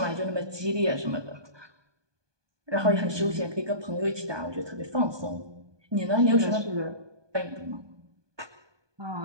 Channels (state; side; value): late; left; 1.2 ms